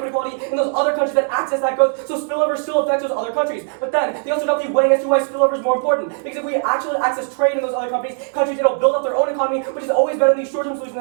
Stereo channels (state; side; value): silent; left; 60 dB below the other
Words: inequality in those other countries that access that growth, so spillover still affects those other countries. But then, they also don't be weighing as to why spillover is more important. Because if we actually access trade in those other countries, it'll build up their own economy, which is always better than these short-term solutions